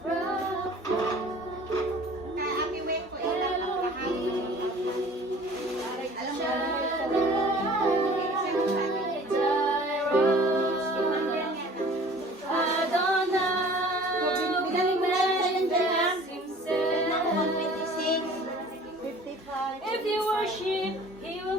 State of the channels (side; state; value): both; normal; correlation 0.48